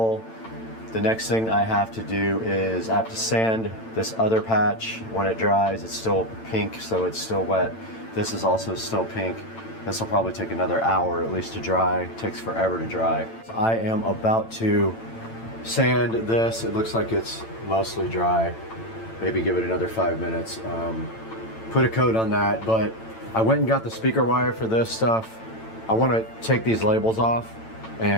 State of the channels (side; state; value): right; late; 8.9 ms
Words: The next thing I have to do is I have to sand this other patch. When it dries, it's still pink, so it's still wet. This is also still pink. This will probably take another hour at least to dry. It takes forever to dry. I am about to sand this. It looks like it's mostly dry. Maybe give it another 5 minutes. Put a coat on that, but I went and got the speaker wire for this stuff. I want to take these labels off